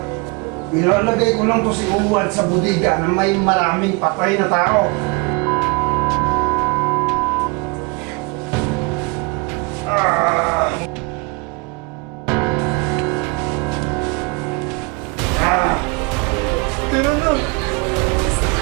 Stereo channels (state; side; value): quieter; left; 28.5 dB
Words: Ilalagay ko lang to si Uwan sa budiga na may maraming patay na tao. Ah! Ah! Tira na!